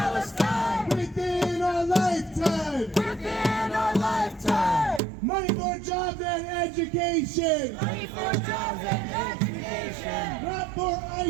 Within our lifetime! Within our lifetime! Money for jobs and education! Money for jobs and education! Not for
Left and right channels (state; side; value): drops out; left; at 5.0 s